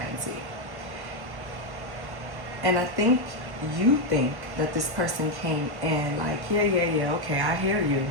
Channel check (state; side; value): late; left; 1.1 ms